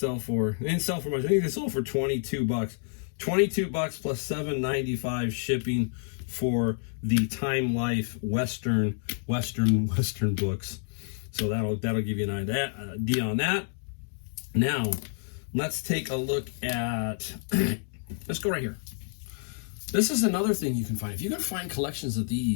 for? They didn't sell for much. I think they sold for $22. $22 plus $7.95 shipping for the Time Life Western books. So that'll give you an idea on that. Now, let's take a look at. Let's go right here. This is another thing you can find. If you can find collections of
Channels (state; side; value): silent; right; 59 dB below the other